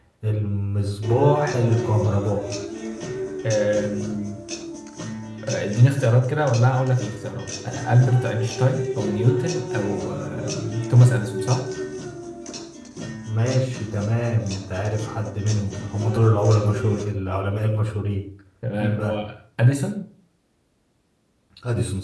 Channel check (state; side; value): identical; both; correlation 1.00